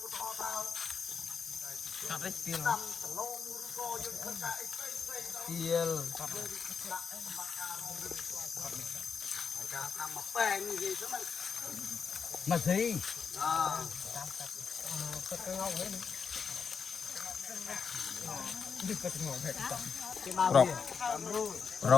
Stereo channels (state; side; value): quieter; right; 6.0 dB